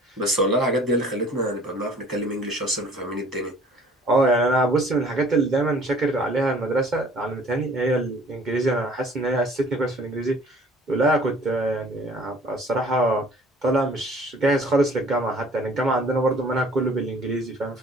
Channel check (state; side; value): normal; both; correlation 0.52